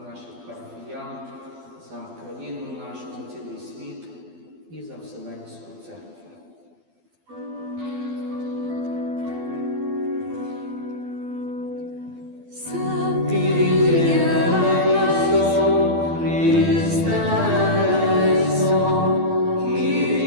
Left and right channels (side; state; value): left; late; 12 ms